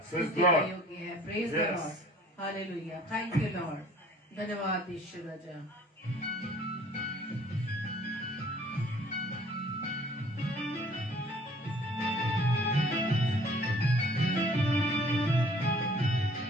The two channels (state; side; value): normal; both; correlation 0.54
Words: है। Praise the Lord, hallelujah, thank you Lord, धन्यवाद ईश्वर राजा।